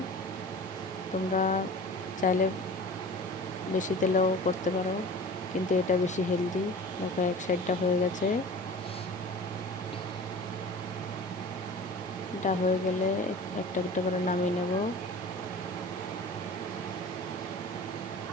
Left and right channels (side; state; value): both; normal; correlation 0.39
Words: তোমরা চাইলে বেশি তেলেও করতে পারো, কিন্তু এটা বেশি হেলদি। দেখো এক সাইডটা হয়ে গেছে। এটা হয়ে গেলে একটা একটা করে নামিয়ে নেব।